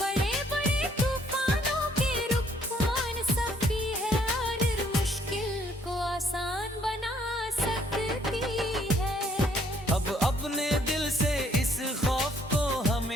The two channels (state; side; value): normal; both; correlation 0.65